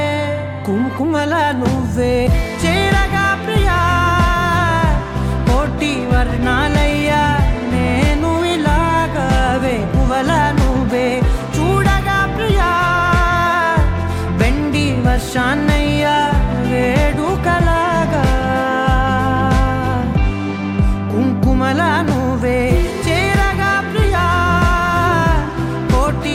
కుంకుమల నువ్వే చేరగా ప్రియా కోటి వర్ణాలయ్యా నేను ఇలాగవే పువ్వల నువ్వే చూడగా ప్రియా బెండి వర్షాన్నయ్యా వేడుకలాగా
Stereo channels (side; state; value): both; identical; correlation 1.00